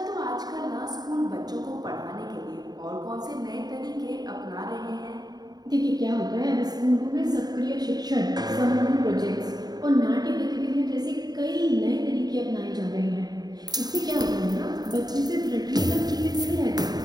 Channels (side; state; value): left; late; 0.19 ms